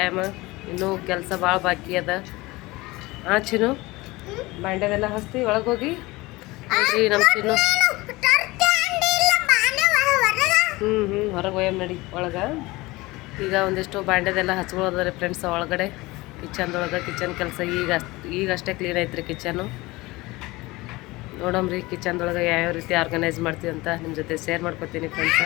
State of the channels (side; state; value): right; quieter; 21.3 dB